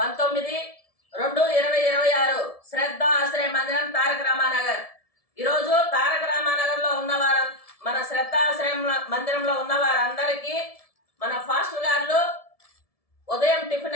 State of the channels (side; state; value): right; late; 1.7 ms